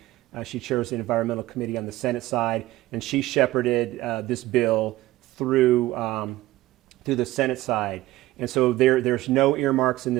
She chairs the Environmental Committee on the Senate side, and she shepherded this bill through the Senate side. And so there's no earmarks in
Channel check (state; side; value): quieter; left; 17.0 dB